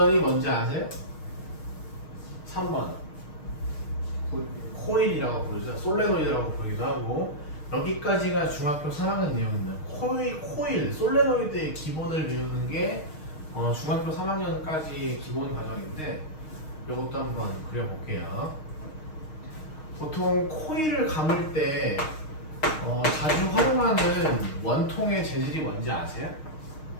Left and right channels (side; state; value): right; late; 6.4 ms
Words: 뭔지 아세요? 3번 코일이라고 부르죠. 솔레노이드라고 부르기도 하고 여기까지가 중학교 3학년 내용입니다. 코일, 솔레노이드의 기본을 배우는 게 중학교 3학년까지의 기본 과정인데 이것도 한번 그려볼게요. 보통 코일을 감을 때 자주 활용하는 원통의 재질이 뭔지 아세요?